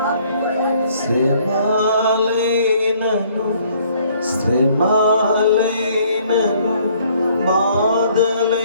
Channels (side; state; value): both; inverted; correlation -0.61